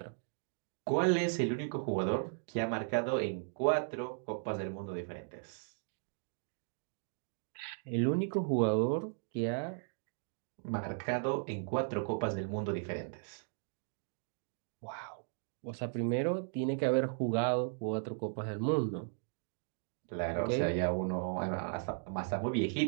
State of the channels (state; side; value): silent; left; digital silence